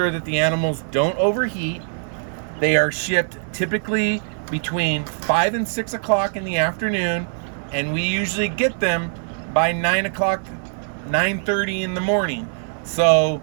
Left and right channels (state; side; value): silent; left; digital silence